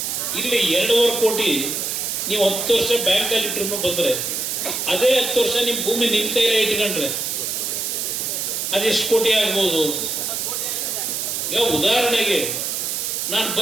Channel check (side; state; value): right; noise; hiss, 2 dB below the sound